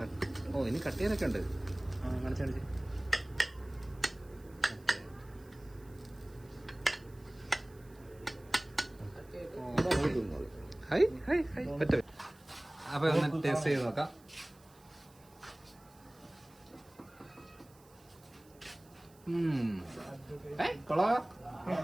ഇനി കട്ട് ചെയ്യാനൊക്കെ ഉണ്ട്. കാണിച്ച് ഹായ് ഹായ് ഹായ് പറ്റും. അപ്പൊ ഒന്ന് ടേസ്റ്റ് ചെയ്ത് നോക്കാം. കൊള്ളാ,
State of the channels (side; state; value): right; noise; hiss, 27 dB below the sound